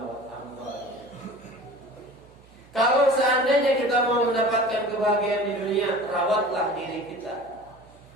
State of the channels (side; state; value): right; noise; hum, 26 dB below the sound